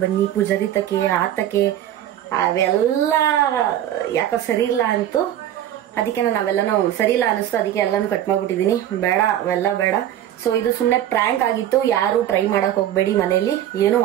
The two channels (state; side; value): quieter; left; 11.6 dB